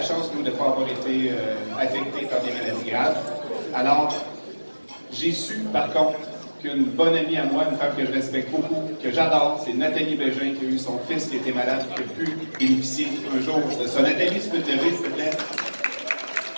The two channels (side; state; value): both; inverted; correlation -1.00